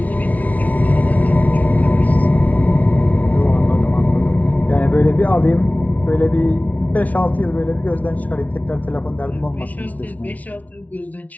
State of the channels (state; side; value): late; right; 0.072 ms